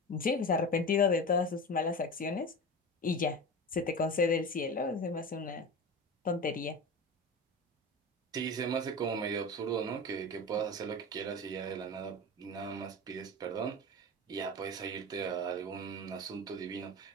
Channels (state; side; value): normal; both; correlation 0.28